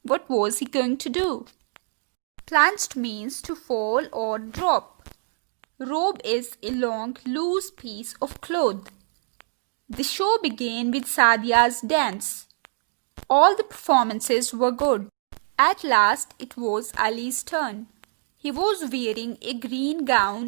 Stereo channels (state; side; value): silent; left; 62 dB below the other